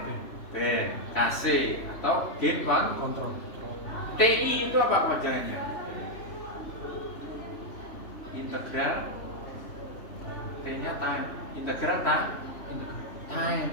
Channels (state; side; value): late; right; 3.0 ms